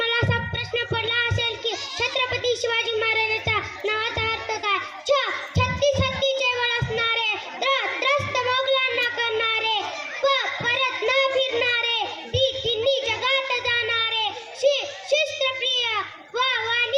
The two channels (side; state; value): both; identical; correlation 1.00